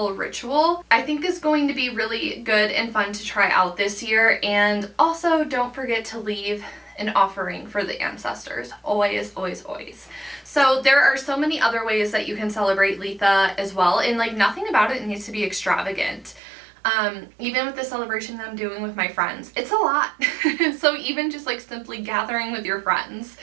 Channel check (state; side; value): drops out; left; at 16.4 s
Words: ritual, I think, is going to be really good and fun to try out this year. And also don't forget to leave an offering for the ancestors. Always, always, always. So there are so many other ways that you can celebrate Litha as well, and like nothing about it needs to be extravagant. Even with the celebration that I'm doing with my friends, it's a lot. So even just like simply gathering with your friends